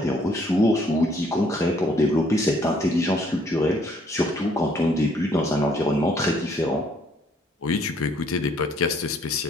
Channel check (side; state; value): both; normal; correlation 0.65